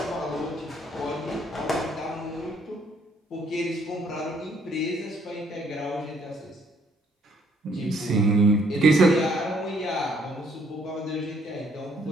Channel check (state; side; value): normal; both; correlation 0.66